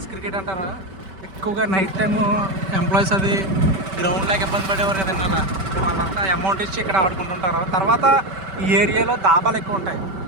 క్రికెట్ అంటారు. ఎక్కువగా నైట్ టైము ఎంప్లాయీస్ అది గ్రౌండ్ లాగా ఇబ్బంది పడేవారు కదండి. అలా వాళ్ళంతా అమౌంట్ ఇచ్చి ఇక్కడ ఆడుకుంటుంటారు. తర్వాత ఈ ఏరియాలో దాబాలు ఎక్కువ ఉంటాయి,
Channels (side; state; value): left; late; 5.2 ms